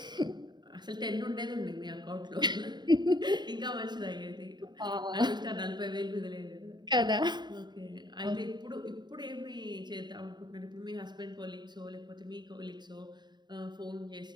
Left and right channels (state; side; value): late; left; 0.21 ms